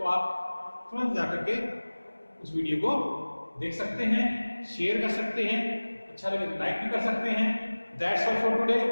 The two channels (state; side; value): inverted; both; correlation -1.00